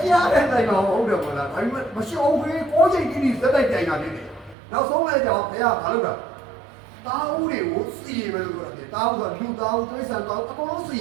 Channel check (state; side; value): drops out; left; at 4.5 s